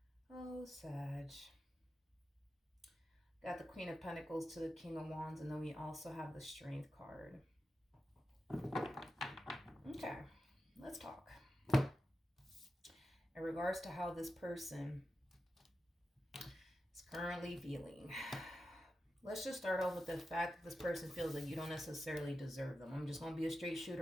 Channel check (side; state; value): both; normal; correlation 0.91